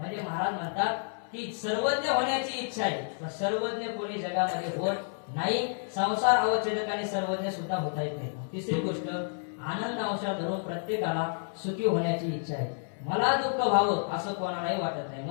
महाराज म्हणतात की सर्वज्ञ होण्याची इच्छा आहे, पण सर्वज्ञ कोणी जगामध्ये होत नाही. संसार अवच्छेदकाने सर्वज्ञ सुद्धा होता येत नाही. तिसरी गोष्ट, आनंद अंशाला धरून प्रत्येकाला सुखी होण्याची इच्छा आहे. मला दुःख व्हावं असं कोणालाही वाटत नाही.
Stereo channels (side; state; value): right; silent; 58 dB below the other